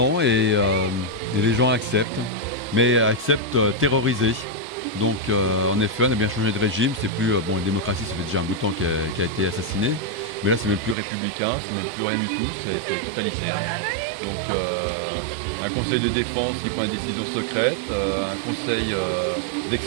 et les gens acceptent, mais acceptent terrorisés. Donc en effet, on a bien changé de régime. C'est plus la démocratie, ça fait déjà un bout de temps qui a été assassiné, mais là c'est même plus républicain, c'est même plus rien du tout, c'est totalitaire. Donc un conseil de défense qui prend des décisions secrètes, un conseil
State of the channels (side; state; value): left; drops out; at 11.0 s